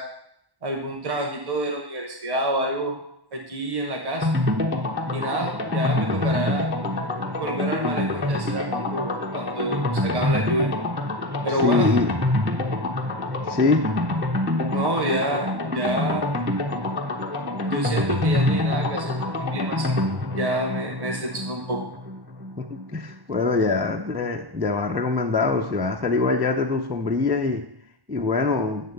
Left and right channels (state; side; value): late; left; 1.1 ms